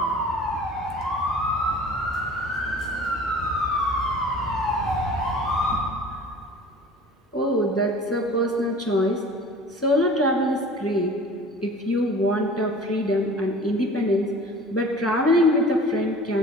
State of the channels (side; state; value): both; normal; correlation 0.44